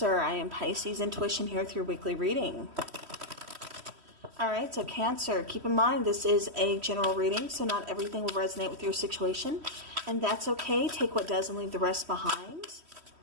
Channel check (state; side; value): late; left; 3.1 ms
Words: I am Pisces Intuition here with your weekly reading. Alright, so Cancer, keep in mind this is a general reading, so not everything will resonate with your situation, and that's okay. Take what does and leave the rest behind.